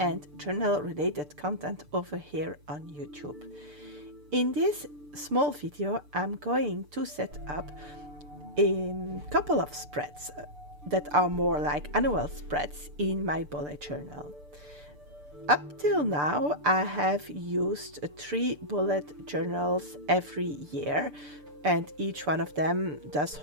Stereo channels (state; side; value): late; left; 6.8 ms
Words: journal-related content over here on YouTube. In this small video, I'm going to set up a couple of spreads that are more like annual spreads in my bullet journal. Up till now, I have used 3 bullet journals every year, and each one of them does